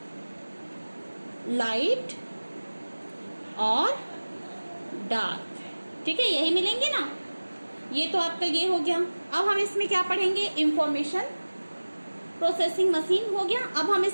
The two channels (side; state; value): both; inverted; correlation -1.00